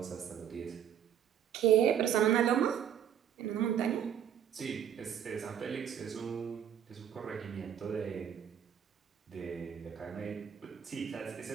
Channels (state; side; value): quieter; left; 9.3 dB